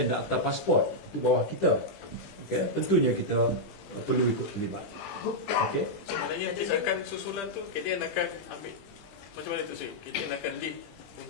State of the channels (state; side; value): late; right; 20 ms